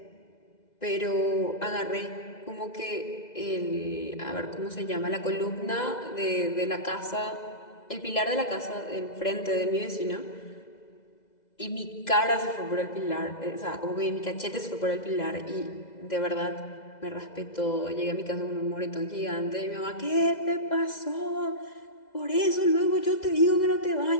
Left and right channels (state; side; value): late; right; 2.0 ms